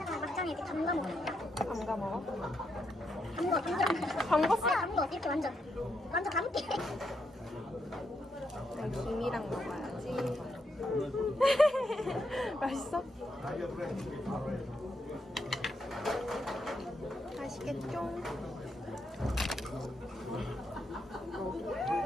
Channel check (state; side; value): normal; both; correlation 0.80